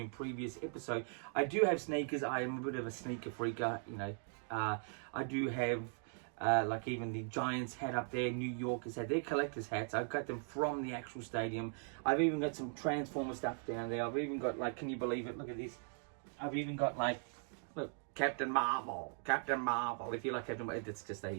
in previous episode. I do have sneakers. I am a bit of a sneaker freaker, you know. I do have, like even the Giants hat up there, New Yorkers hat. They're collector's hats. I've got them from the actual stadium. I've even got some Transformer stuff down there. I've even got, like, can you believe it? Look at this. I've even got, like, look, Captain Marvel. If you like Captain Marvel, it's just a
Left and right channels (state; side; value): silent; left; 52 dB below the other